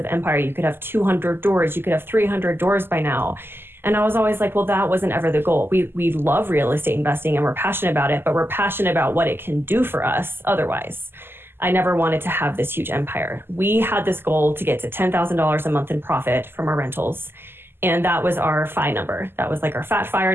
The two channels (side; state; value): left; late; 0.11 ms